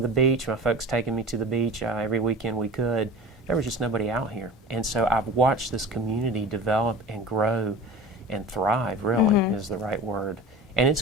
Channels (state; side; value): normal; both; correlation 0.36